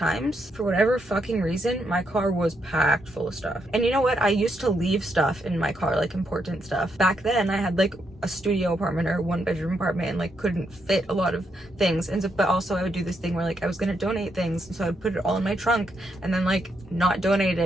for whatever fucking reason, my car was packed full of stuff. And you know what? I used to leave stuff in my car, like important stuff. Back then, I had like a studio apartment or a 1-bedroom apartment and like couldn't fit a lot of things. And so, but also I would do this thing where like I was gonna donate things, and so I would put it all in my trunk and then like not donate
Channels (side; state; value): both; normal; correlation 0.79